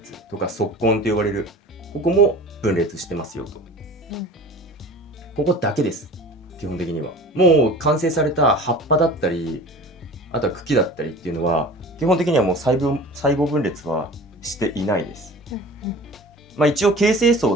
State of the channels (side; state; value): both; normal; correlation 0.40